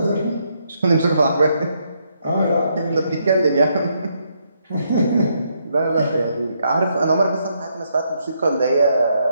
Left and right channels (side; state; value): both; inverted; correlation -0.76